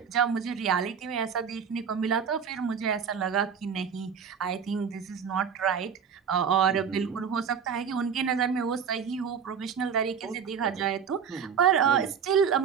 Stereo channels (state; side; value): quieter; left; 7.1 dB